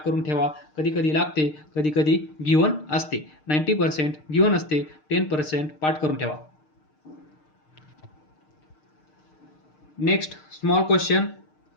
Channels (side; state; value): right; late; 6.6 ms